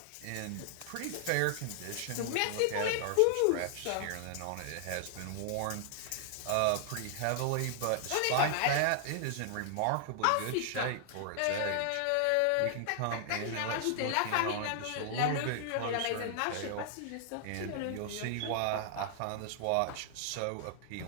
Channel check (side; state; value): both; different; correlation 0.00